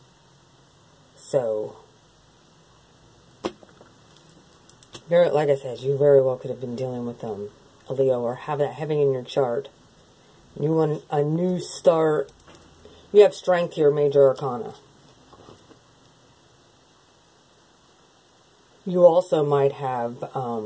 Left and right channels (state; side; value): identical; both; correlation 1.00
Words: So, like I said, you very well could have been dealing with a Leo, or have that having in your chart. You want a new start. You have strength here, major arcana. You also might have